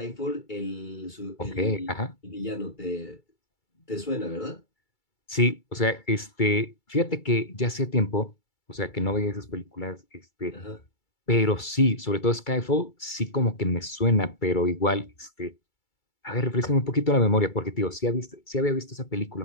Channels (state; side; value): late; right; 2.3 ms